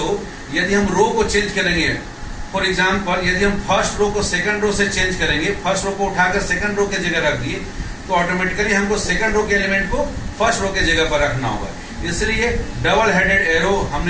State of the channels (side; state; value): both; identical; correlation 1.00